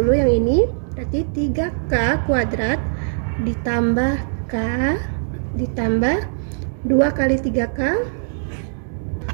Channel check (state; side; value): silent; left; 64 dB below the other